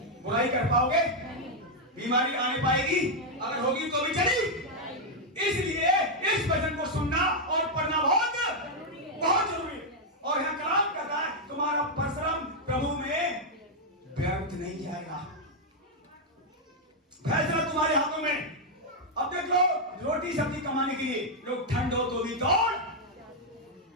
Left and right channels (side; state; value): both; normal; correlation -0.01